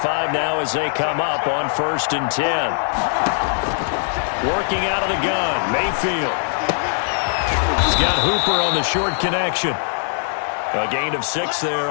now as they come up on 1st and 10. Working out of the gun, Mayfield. He's got Hooper on the short connection. A gain of 6 there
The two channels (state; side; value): silent; right; digital silence